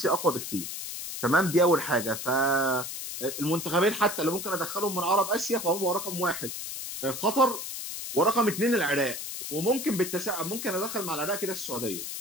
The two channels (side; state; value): left; noise; hiss, 7 dB below the sound